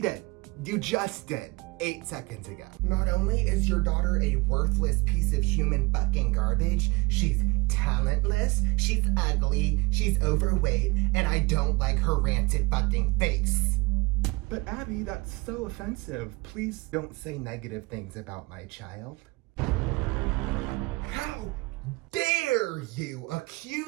You just did. 8 seconds ago. Not only is your daughter a worthless piece of human fucking garbage, she's talentless, she's ugly, she's overweight, and I don't like her rancid fucking face. But Abby, that's so offensive. Please don't say negative things about my child. How dare you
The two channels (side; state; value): left; quieter; 23.8 dB